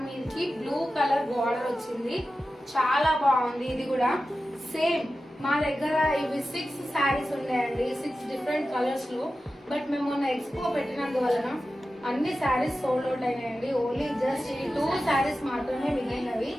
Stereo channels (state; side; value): normal; both; correlation 0.93